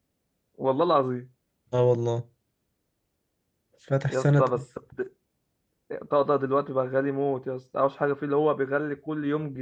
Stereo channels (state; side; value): identical; both; correlation 1.00